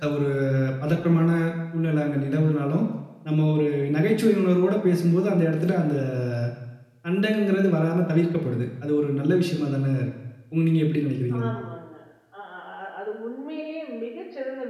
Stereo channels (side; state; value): both; identical; correlation 1.00